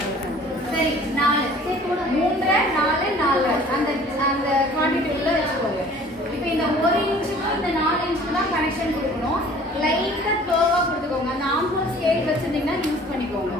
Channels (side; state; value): both; normal; correlation 0.51